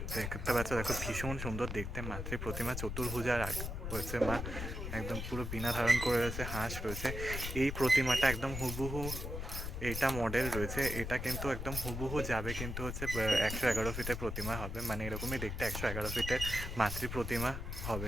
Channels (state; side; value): noise; left; rumble, 5 dB below the sound